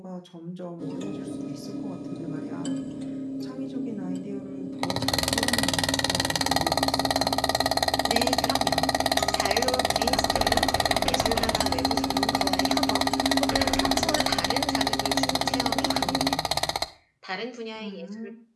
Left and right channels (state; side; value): identical; both; correlation 1.00